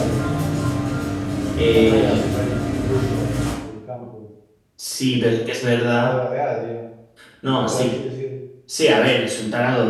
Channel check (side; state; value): both; identical; correlation 1.00